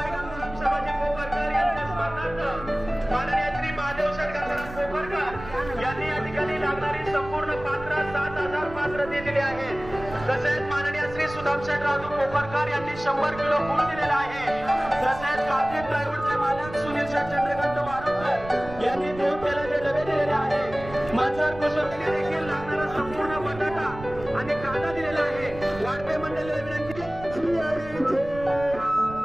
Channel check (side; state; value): right; noise; rumble, 14 dB below the sound